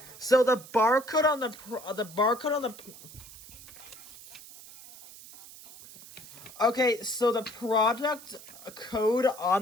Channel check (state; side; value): noise; right; hiss, 18 dB below the sound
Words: so the barcode on the okay, so the product code